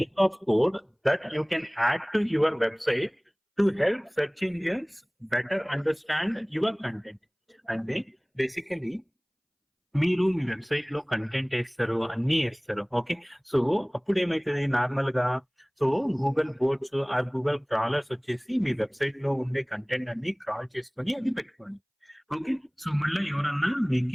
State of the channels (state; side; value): identical; both; correlation 1.00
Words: of code that you can add to your website to help search engines better understand your content. అంటే బేసికలీ మీరు మీ వెబ్సైట్ లో కంటెంట్ వేస్తారు, అన్ని వేస్తారు. ఓకే, సో అప్పుడు ఏమైతుంది నార్మల్ గా so Google boats are Google crawlers వచ్చేసి మీ వెబ్సైట్ లో ఉండే కంటెంట్ అన్ని క్రాల్ చేసుకొని అది పెట్టుకోండి. ఓకే, సో మళ్ళీ ఎవరన్నా